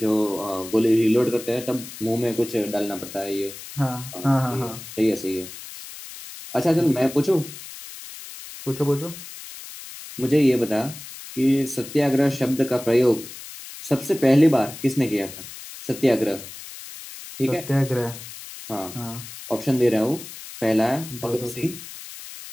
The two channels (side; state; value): left; noise; hiss, 13 dB below the sound